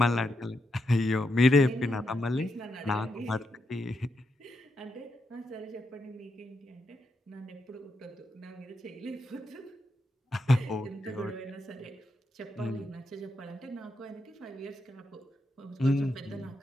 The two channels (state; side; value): normal; both; correlation 0.83